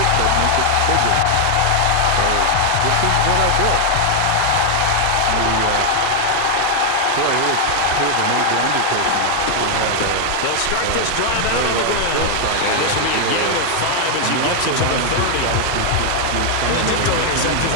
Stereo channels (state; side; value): different; both; correlation 0.00